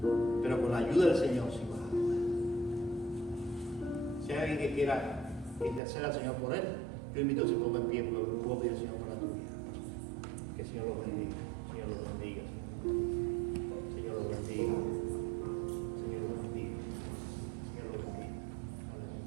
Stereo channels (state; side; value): drops out; left; at 5.8 s